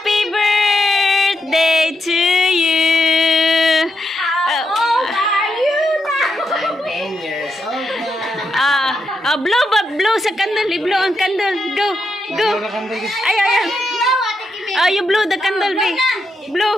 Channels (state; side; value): normal; both; correlation 0.83